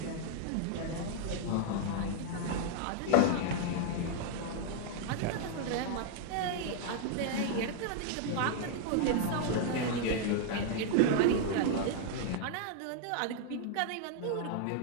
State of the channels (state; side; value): different; both; correlation 0.00